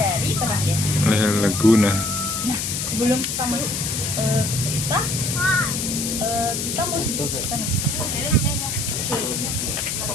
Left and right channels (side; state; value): left; noise; hiss, 2 dB below the sound